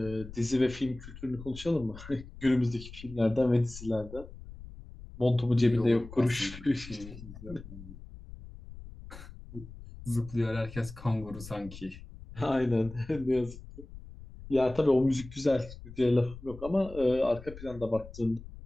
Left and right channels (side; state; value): left; noise; rumble, 15 dB below the sound